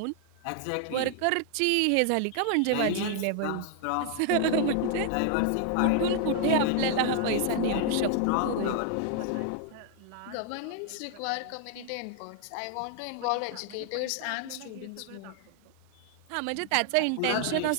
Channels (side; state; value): both; different; correlation 0.00